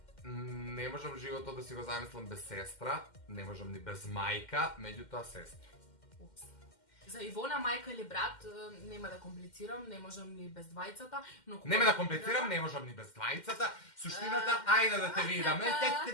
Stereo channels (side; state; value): right; late; 2.1 ms